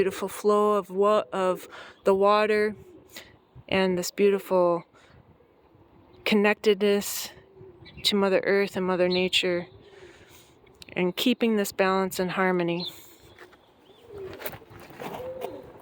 flow of the water and this beautiful connectedness to Mother Earth and Mother Nature, and keeping this balance and harmony.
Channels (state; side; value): identical; both; correlation 1.00